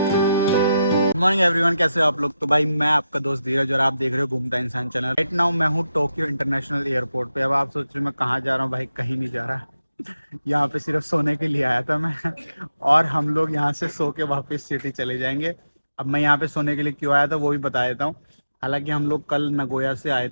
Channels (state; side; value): inverted; both; correlation -0.89